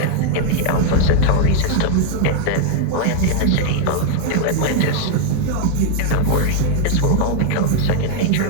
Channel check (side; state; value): both; different; correlation 0.00